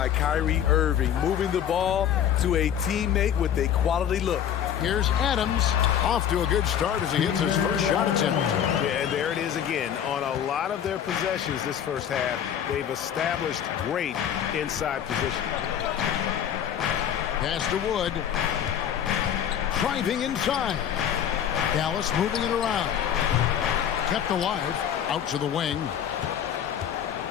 Kyrie Irving, moving the ball to a teammate with a quality look. Here's Adams, off to a good start as he hits his first shot attempt. Yeah, and there it is again. On a lot of their possessions this first half, they've established great inside position. Pass to Wood. Driving inside. Dallas moving it around. Kept alive. Out to the wing.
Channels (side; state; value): right; quieter; 9.4 dB